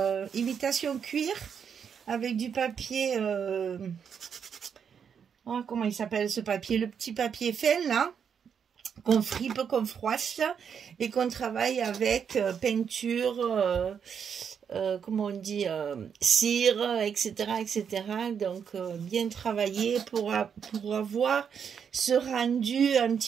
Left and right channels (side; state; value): left; quieter; 7.3 dB